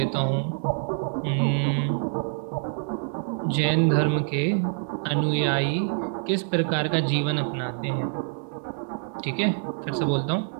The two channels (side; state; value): left; silent; 61 dB below the other